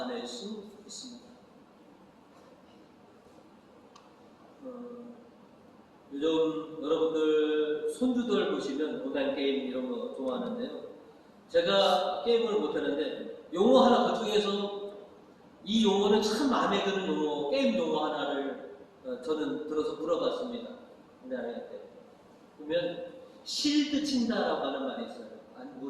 수 있습니다. 요즘 여러분들 손주들 보시면 온라인 게임 이런 거 좋아하는데요. 제가 게임을 못하는데 용어 하나 그중에서 이 용어는 참 마음에 드는 용어, 게임 용어 하나를 저는 들어서 물어봤습니다. 우리 아이한테. 그러면 실드 친다라고 하는 말이 있어요. 안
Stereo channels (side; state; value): both; identical; correlation 1.00